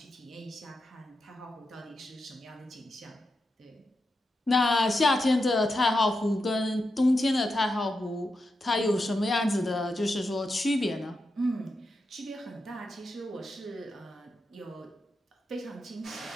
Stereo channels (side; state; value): both; normal; correlation 0.88